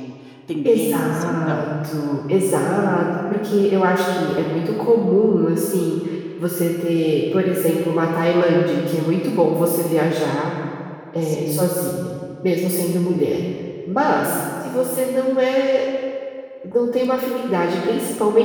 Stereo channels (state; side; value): identical; both; correlation 1.00